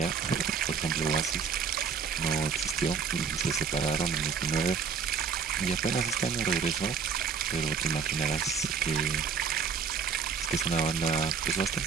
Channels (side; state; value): left; quieter; 6.1 dB